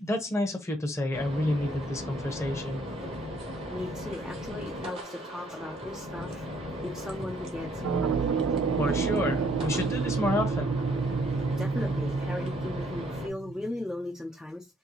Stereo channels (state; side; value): normal; both; correlation 0.66